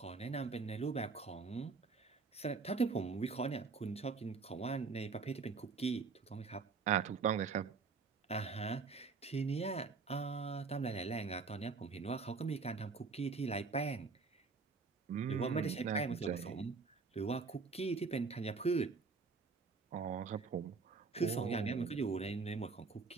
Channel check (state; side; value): quieter; left; 4.6 dB